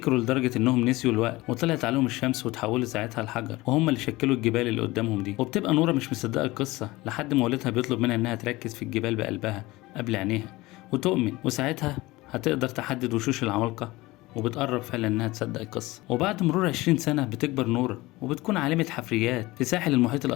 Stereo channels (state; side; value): quieter; right; 20.3 dB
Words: لدرجة إنهم نسيوا الوقت وطلعت عليهم الشمس وتحولوا ساعتها لحجر، وهم اللي شكلوا الجبال اللي قدامهم دي. وبتبقى نورة مش مصدقة القصة لحد ما والدها بيطلب منها إنها تركز في الجبال بقلبها قبل عينيها وتؤمن، وساعتها هتقدر تحدد وشوش العمالقة، وبتقرب فعلا انها تصدق القصة. وبعد مرور 20 سنة بتكبر نورة وبتكون عالمة حفريات في ساحل المحيط